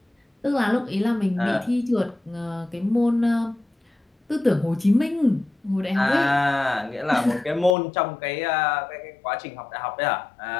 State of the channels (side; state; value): right; drops out; at 7.8 s